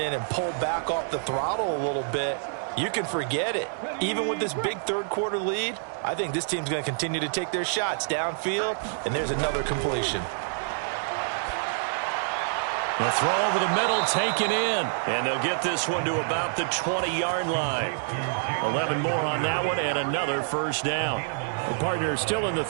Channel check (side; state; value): left; silent; digital silence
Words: and pull back off the throttle a little bit, you can forget it. Even with this big third-quarter lead, I think this team's going to continue to take their shots downfield, and there's another completion. The throw over the middle taken in, and they'll get this one to about the 20-yard line. 11 more on that one and another first down. The partner is still in the